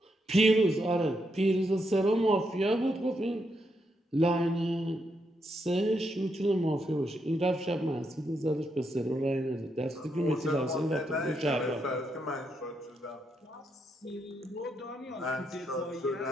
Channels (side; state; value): both; normal; correlation 0.80